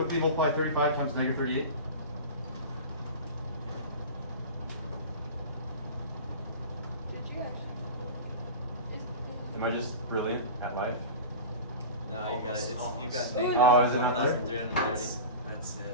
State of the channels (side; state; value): both; inverted; correlation -0.30